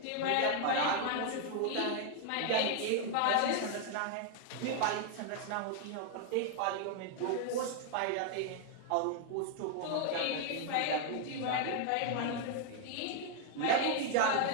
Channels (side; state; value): both; different; correlation 0.00